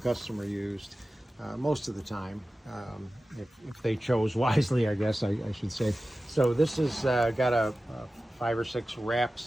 customer used most of the time, if they chose wisely, I guess I should say. So this has got a 5 or 6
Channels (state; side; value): normal; both; correlation 0.95